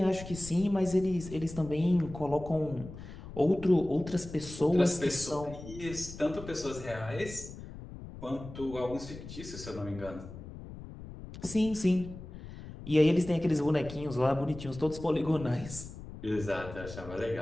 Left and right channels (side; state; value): left; noise; rumble, 13 dB below the sound